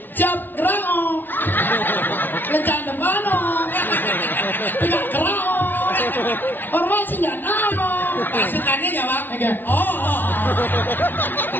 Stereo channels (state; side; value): late; right; 0.093 ms